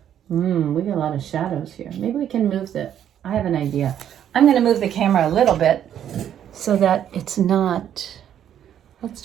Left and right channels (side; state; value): left; quieter; 10.0 dB